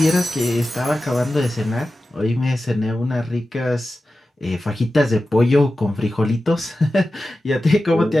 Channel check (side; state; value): both; normal; correlation 0.94